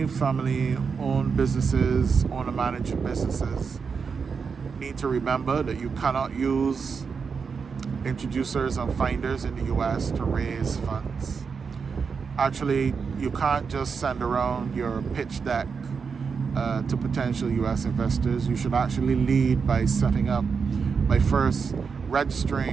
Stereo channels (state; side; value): quieter; left; 5.7 dB